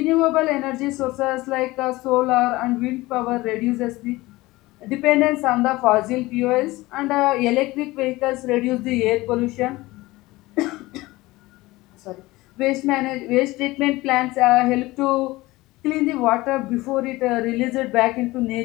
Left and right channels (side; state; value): right; quieter; 19.8 dB